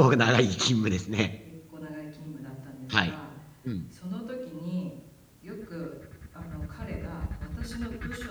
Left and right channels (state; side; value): identical; both; correlation 1.00